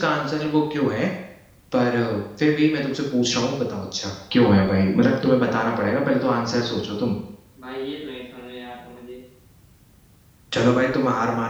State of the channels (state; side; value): identical; both; correlation 1.00